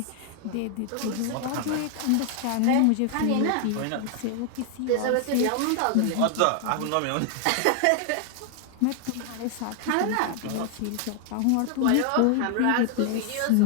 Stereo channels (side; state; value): both; different; correlation 0.00